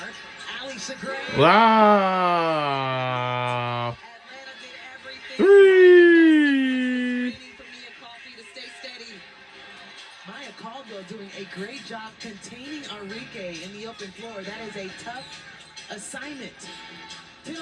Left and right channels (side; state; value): both; identical; correlation 1.00